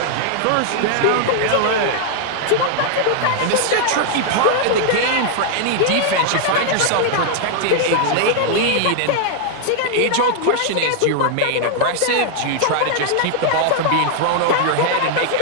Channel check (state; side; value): different; both; correlation 0.00